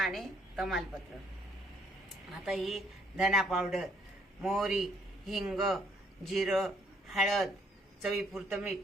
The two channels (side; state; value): both; normal; correlation 0.67